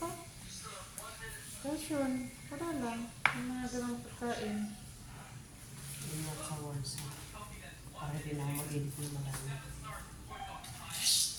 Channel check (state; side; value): identical; both; correlation 1.00